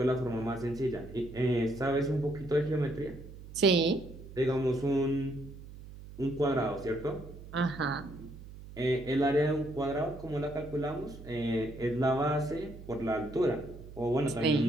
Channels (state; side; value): noise; right; hum, 15 dB below the sound